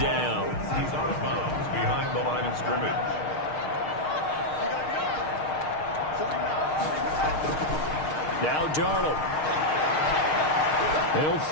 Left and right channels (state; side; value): late; right; 6.5 ms